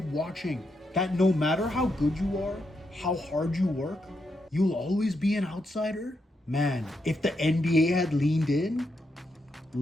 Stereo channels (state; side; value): normal; both; correlation 0.82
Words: watching? That no matter how good you are, how hard you work, you'll always be an outsider? Man, if the NBA had leaned in,